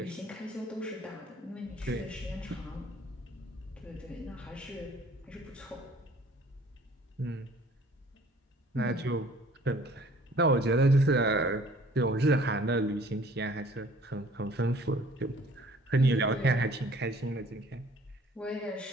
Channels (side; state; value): both; normal; correlation 0.54